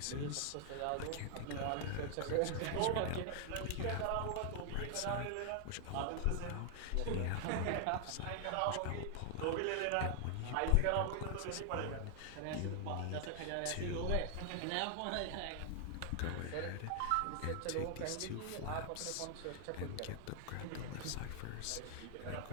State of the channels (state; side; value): different; both; correlation 0.00